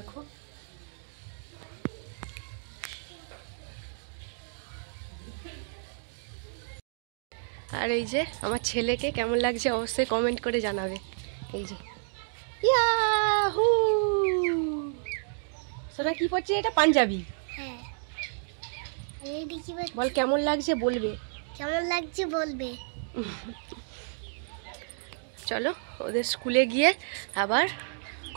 আর এই যে আমার ছেলেকে কেমন লাগছে অবশ্যই কমেন্ট করে জানাবে। এই যে ইয়াহু, সোনা কি পড়ছে? এটা পাঞ্জাবি। হ্যাঁ, বল কেমন লাগছে বলবে। কেমন লাগছে বলবে। চলো ওদের স্কুলে গিয়ে আবার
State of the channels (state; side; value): silent; left; digital silence